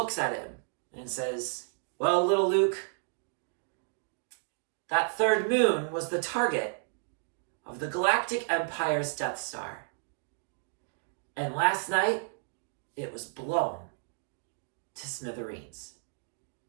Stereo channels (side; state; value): left; silent; digital silence